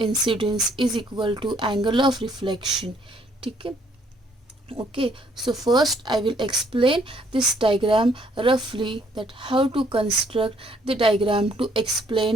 is equal to angle of reflection. Okay? Okay, so first I will explain this diagram roughly, that how to construct the diagram to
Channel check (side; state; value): both; normal; correlation 0.66